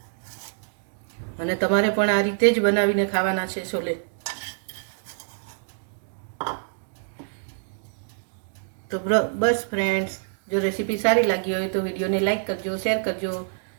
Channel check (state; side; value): silent; left; digital silence